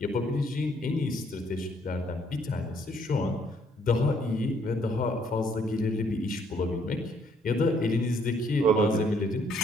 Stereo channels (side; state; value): both; normal; correlation 0.67